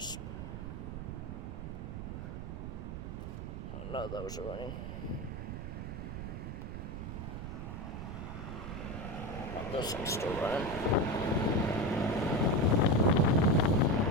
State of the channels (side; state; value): right; noise; rumble, 6 dB below the sound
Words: I know those are running. And this one's still running.